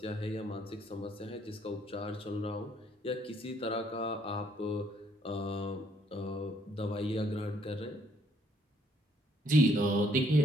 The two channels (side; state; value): both; normal; correlation 0.66